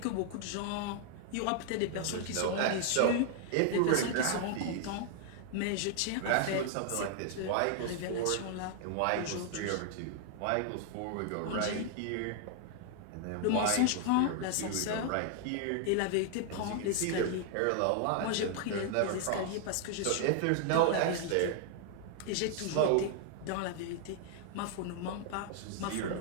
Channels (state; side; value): different; both; correlation 0.00